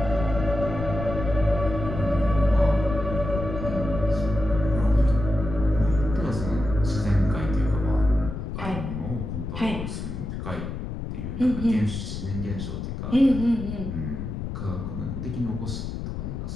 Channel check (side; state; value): left; noise; rumble, 6 dB below the sound